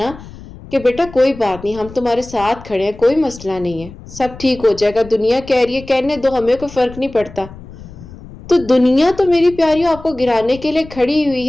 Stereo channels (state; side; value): noise; left; rumble, 17 dB below the sound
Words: کہ بیٹا کوئی بات نہیں، ہم تمہارے ساتھ کھڑے ہیں، کوئی مسئلہ نہیں ہے، سب ٹھیک ہو جائے گا، دنیا کہہ رہی ہے کہنے دو، ہمیں کوئی فرق نہیں پڑتا. تو دنیا تو میری پیاریوں آپ کو گرانے کے لیے کھڑی